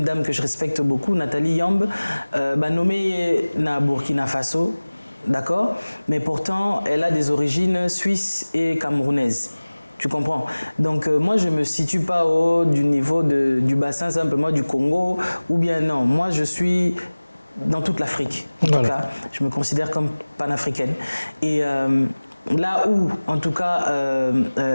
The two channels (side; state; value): both; inverted; correlation -1.00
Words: dame que je respecte beaucoup, Nathalie Yamb, nommée na Burkina Faso, d'accord, mais pourtant, elle a des origines suisses et camerounaises. Tu comprends? Donc moi, je ne me situe pas au haut du niveau du bassin simplement du Congo, ou bien non. Moi, je suis dans toute l'Afrique. En tout cas, je me considère comme panafricaine. Et là où, en tout cas,